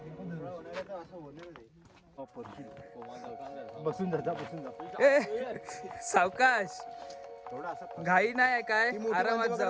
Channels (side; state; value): both; identical; correlation 1.00